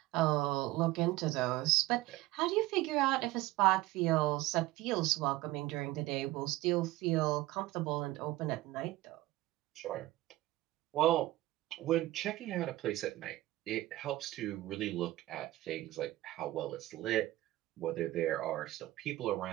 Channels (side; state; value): left; quieter; 17.3 dB